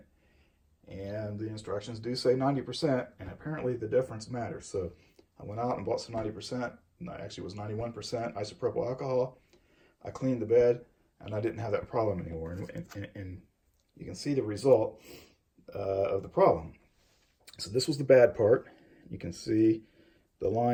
and the instructions do say 90%, and apparently the difference matters. So I went out and bought some 90%, actually it was 91% isopropyl alcohol. I cleaned the bed, and I didn't have that problem anymore. And you can see the result of the problem. So this was the bad part. You can see the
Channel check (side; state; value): both; identical; correlation 1.00